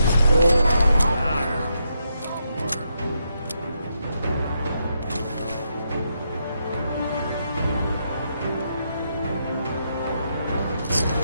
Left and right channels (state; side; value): inverted; both; correlation -0.81